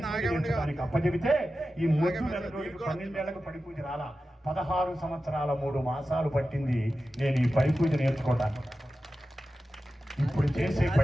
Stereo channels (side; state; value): both; normal; correlation 0.93